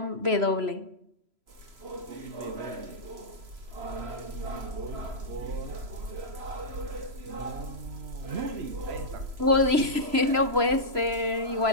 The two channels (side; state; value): left; late; 3.0 ms